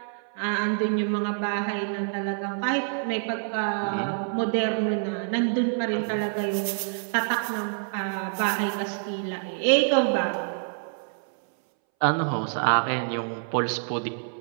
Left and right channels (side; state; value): left; silent; 60 dB below the other